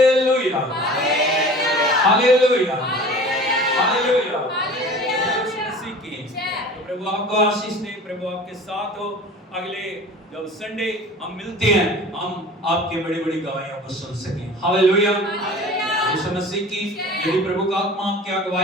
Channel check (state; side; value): normal; both; correlation 0.41